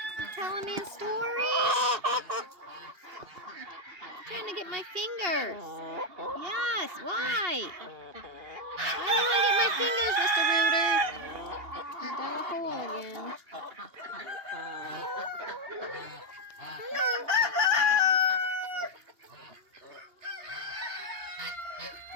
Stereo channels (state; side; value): late; left; 2.8 ms